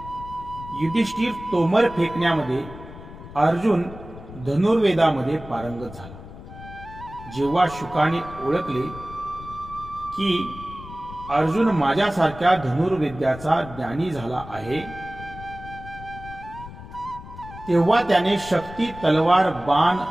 युधिष्ठिर तोमर फेकण्यामध्ये, अर्जुन धनुर्वेदामध्ये पारंगत झाला. जेव्हा शुकाने ओळखले की अर्जुन माझ्यासारख्या धनुर्विद्याचा ज्ञानी झाला आहे, तेव्हा त्याने शक्ती, तलवार, बाण,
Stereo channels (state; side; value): noise; left; rumble, 15 dB below the sound